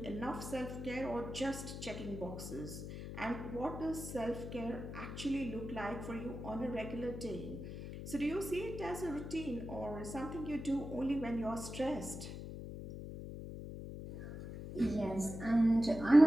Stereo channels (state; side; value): noise; left; hum, 8 dB below the sound